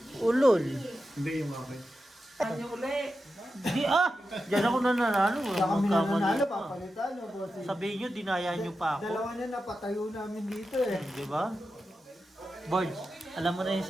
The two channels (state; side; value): normal; both; correlation 0.90